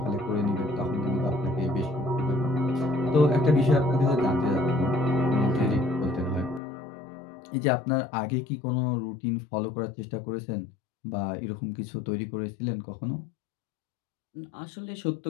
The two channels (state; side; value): drops out; right; at 6.6 s